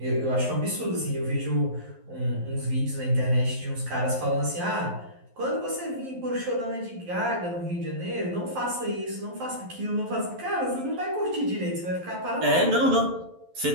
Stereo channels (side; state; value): left; late; 11 ms